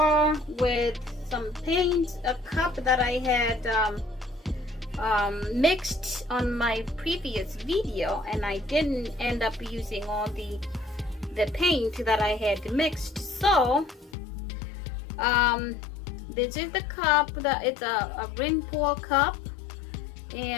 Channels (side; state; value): right; drops out; at 14.2 s